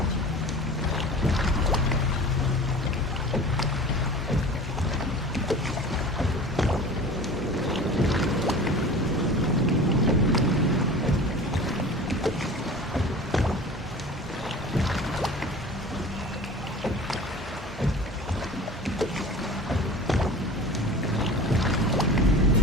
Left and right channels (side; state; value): both; normal; correlation 0.39